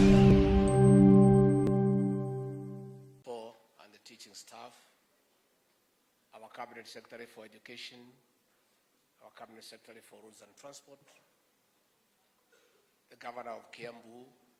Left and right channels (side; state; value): both; identical; correlation 1.00